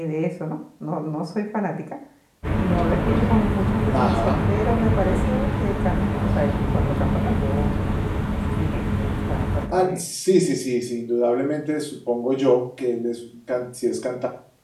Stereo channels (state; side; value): identical; both; correlation 1.00